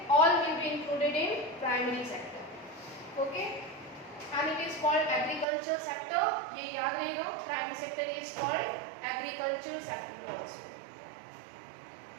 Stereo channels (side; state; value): left; drops out; at 5.5 s